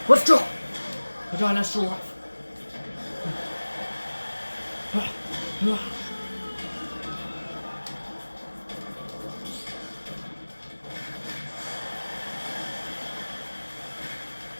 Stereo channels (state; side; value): inverted; both; correlation -1.00